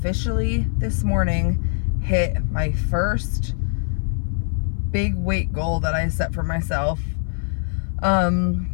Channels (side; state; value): right; silent; 58 dB below the other